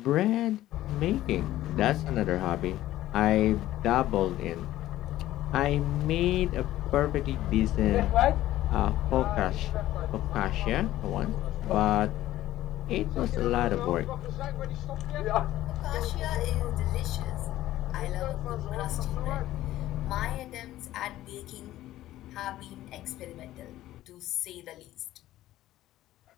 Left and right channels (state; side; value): quieter; right; 14.6 dB